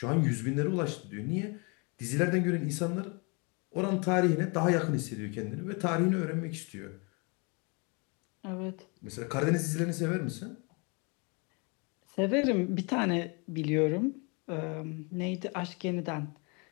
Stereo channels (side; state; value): right; quieter; 32.3 dB